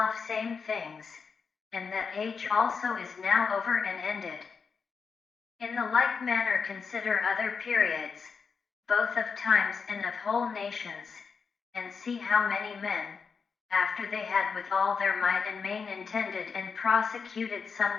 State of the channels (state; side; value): quieter; right; 5.5 dB